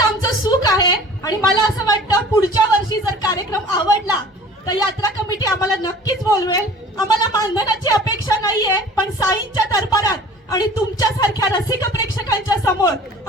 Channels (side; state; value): both; normal; correlation 0.45